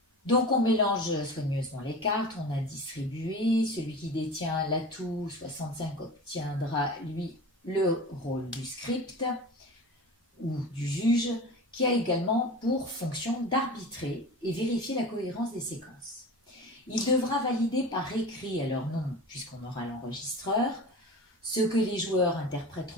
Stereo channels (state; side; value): normal; both; correlation 0.34